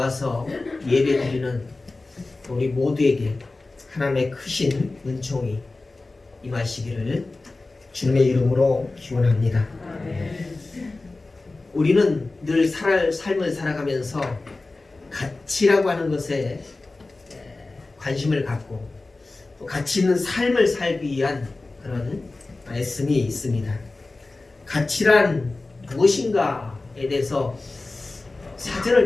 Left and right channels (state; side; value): quieter; right; 3.3 dB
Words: 예배 드리는 우리 모두에게 하나님의 크신 은총이 임하시기를 주님의 이름으로 기원합니다. 우리는 늘 삶을 살아가면서 가치라고 하는 것에 관심을 갖고 또 가치 있는 삶을 살기 위한 그런 말씀이 있습니다. 가치란 무엇인가에 대해서 사전을